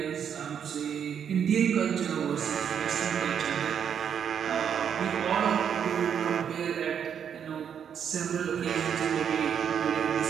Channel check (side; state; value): left; quieter; 8.1 dB